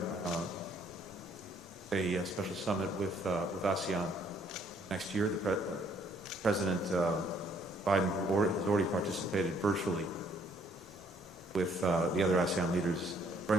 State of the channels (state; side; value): normal; both; correlation 0.65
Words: a special summit with ASEAN next year. President Biden has already participated virtually with the other ASEAN leaders. Very